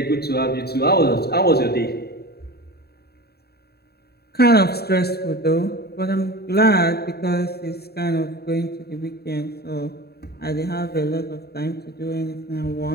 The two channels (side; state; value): right; late; 0.46 ms